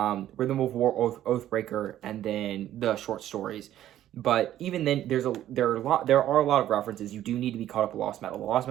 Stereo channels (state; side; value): quieter; left; 12.4 dB